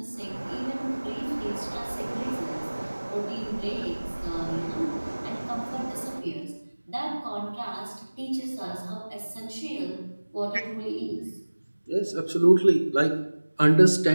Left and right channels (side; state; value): both; inverted; correlation -1.00